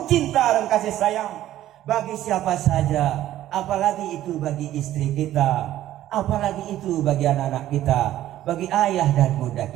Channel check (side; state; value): left; quieter; 13.3 dB